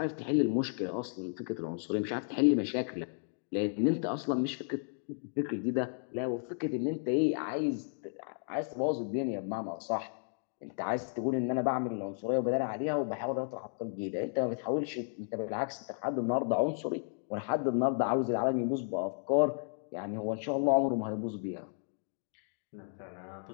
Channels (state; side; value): silent; right; digital silence